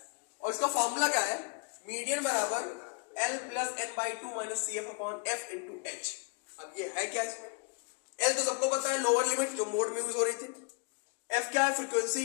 और इसका फॉर्मूला क्या है, मीडियन बराबर L plus n by two minus c f upon f into h. अब ये है क्या, इसमें L तो सबको पता है, लोअर लिमिट जो मोड में यूज हो रही थी। F क्या है,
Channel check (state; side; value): quieter; right; 36.6 dB